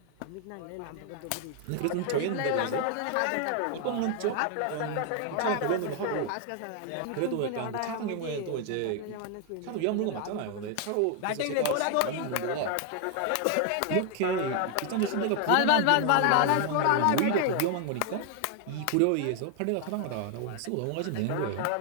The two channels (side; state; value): both; different; correlation 0.00